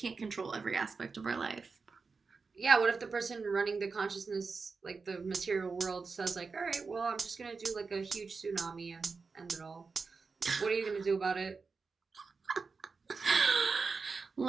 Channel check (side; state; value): left; quieter; 4.7 dB